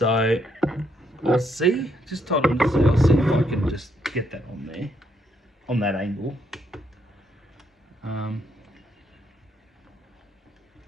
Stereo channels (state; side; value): normal; both; correlation 0.74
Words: I'll see, just hold on to see, I'll see if I can just get that on there, on that angle.